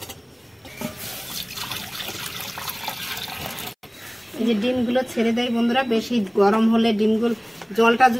এই যে ডিমগুলো ছেড়ে দেয় বন্ধুরা। বেশি গরম হলে ডিমগুলো, জলটা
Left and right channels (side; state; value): both; identical; correlation 1.00